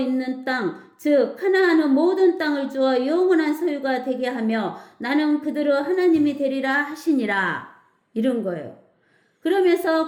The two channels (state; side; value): identical; both; correlation 1.00